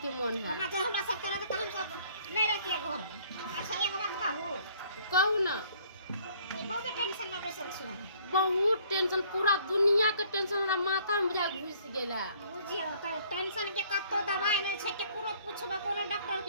के मन है। ओना जे हमरा सब करत त हम सब नहीं रहतिए घर में। अच्छा एक बात कहू ना बहुत टेंशन में बैसल छी हम। बहुत टेंशन पूरा दुनिया के टेंशन हमरा माथा में जा घुस गेला। बुझियो त टेंशन के कतो दवाई नहीं छै के पूरा पूछबे कोनो डॉक्टर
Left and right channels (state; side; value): inverted; both; correlation -0.59